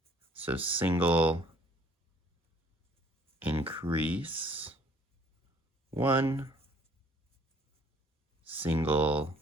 So single, increase, 1, single,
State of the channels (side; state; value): both; normal; correlation 0.58